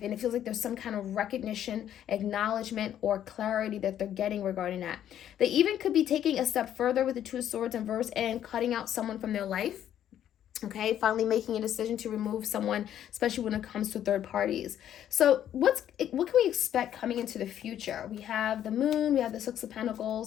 And it feels like there's some kind of recognition, acknowledgement, or clarity that they're getting regarding that. They even could be taking a step further with the Two of Swords in verse and cutting out someone from their life. Okay, finally making a decision to remove someone, especially when it comes to third parties. So what can we expect coming into the future? We have the Moon, we have the Six of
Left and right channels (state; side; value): quieter; right; 10.7 dB